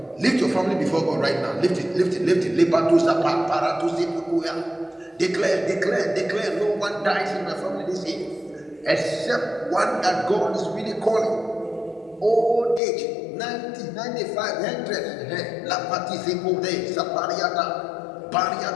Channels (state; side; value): drops out; right; at 12.8 s